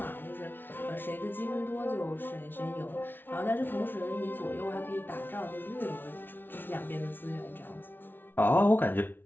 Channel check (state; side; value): late; right; 0.099 ms